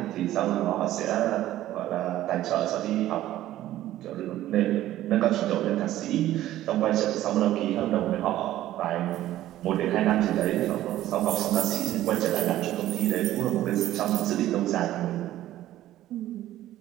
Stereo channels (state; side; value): quieter; left; 14.0 dB